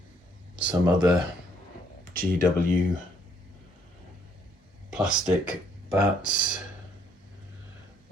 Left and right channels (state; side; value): normal; both; correlation 0.67